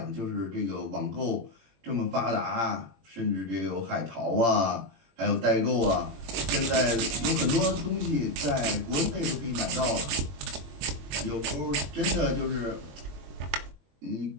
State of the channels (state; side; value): late; left; 21 ms